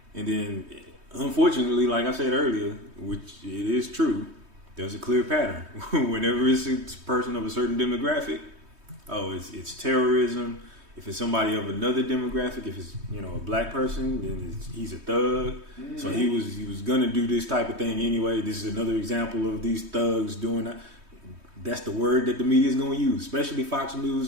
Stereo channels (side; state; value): left; late; 3.2 ms